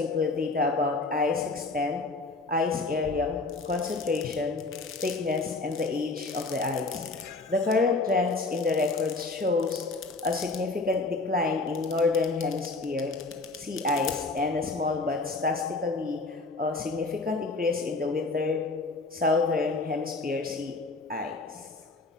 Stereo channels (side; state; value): right; quieter; 3.5 dB